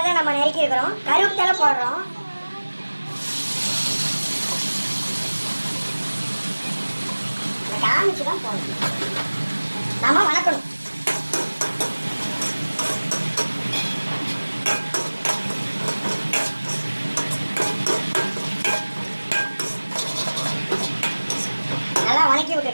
நம்ம நறுக்கி இருக்கிறோம். கருவேப்பிலை போடுறோம். காமிச்சுதான் போடணும். நம்ம வணக்கணும். நல்லா வணக்கி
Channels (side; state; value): both; inverted; correlation -1.00